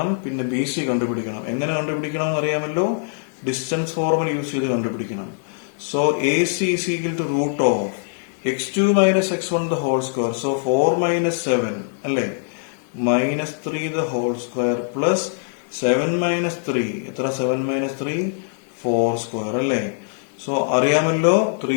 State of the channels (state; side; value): silent; right; digital silence